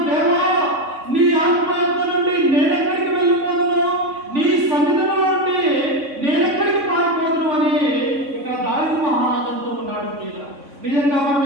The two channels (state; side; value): late; left; 3.6 ms